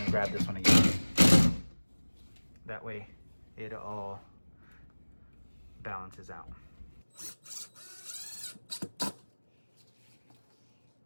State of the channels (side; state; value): both; inverted; correlation -1.00